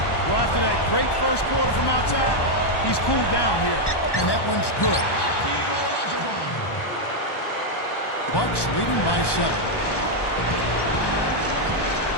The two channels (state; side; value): late; right; 1.1 ms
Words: Well, after that great first quarter from outside, he's cooled down here. And that one's good. Bucks leading by 7.